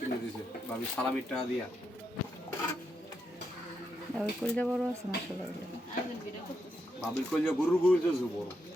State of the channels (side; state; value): both; normal; correlation 0.82